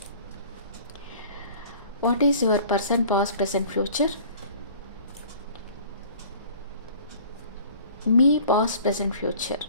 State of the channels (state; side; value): inverted; both; correlation -0.48